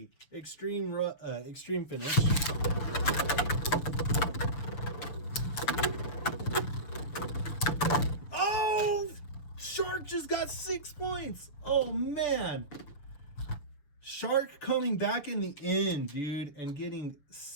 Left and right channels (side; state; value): right; late; 6.8 ms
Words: extreme finish. Oh, Shark just got 6 points. Oh man. Shark coming back in the end, dude, and getting